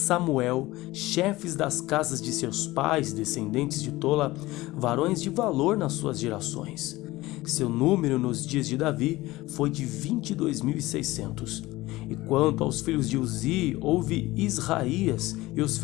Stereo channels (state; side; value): quieter; right; 18.8 dB